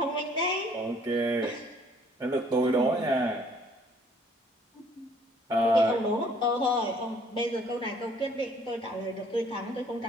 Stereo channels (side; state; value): both; normal; correlation 0.60